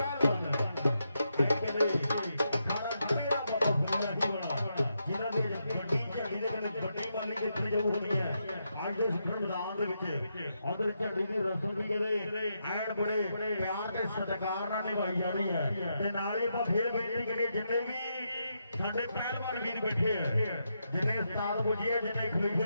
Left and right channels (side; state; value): both; inverted; correlation -0.83